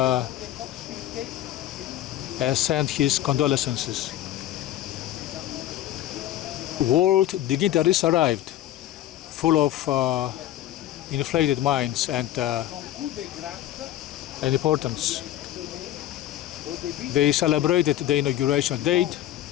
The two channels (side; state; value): right; quieter; 13.2 dB